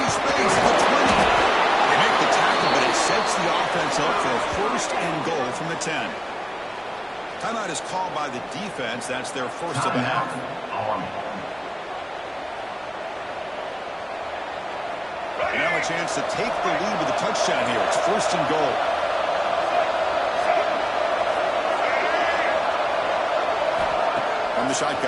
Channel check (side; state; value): both; identical; correlation 1.00